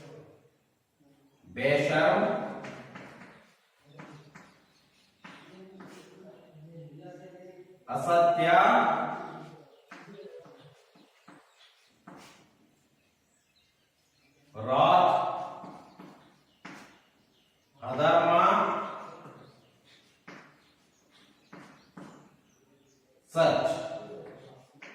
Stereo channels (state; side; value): identical; both; correlation 1.00